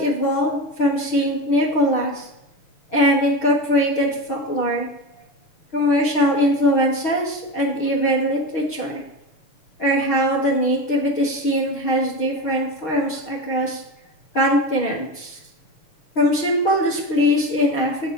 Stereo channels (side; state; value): right; late; 6.4 ms